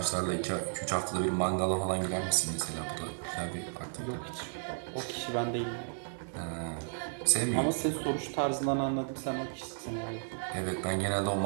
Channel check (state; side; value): silent; left; 55 dB below the other